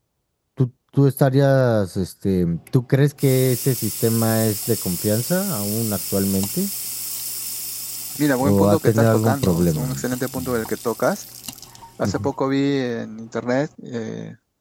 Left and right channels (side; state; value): both; identical; correlation 1.00